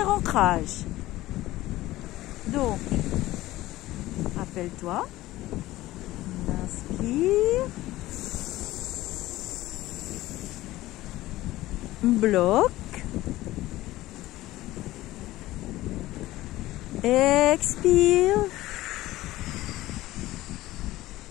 ancrage. Donc, rappelle-toi, on inspire, bloque, expire.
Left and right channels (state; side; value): quieter; right; 16.7 dB